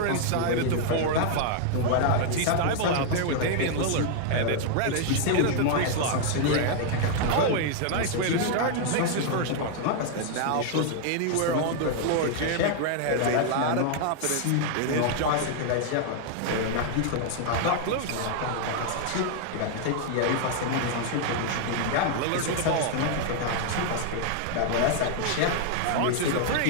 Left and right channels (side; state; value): both; different; correlation 0.00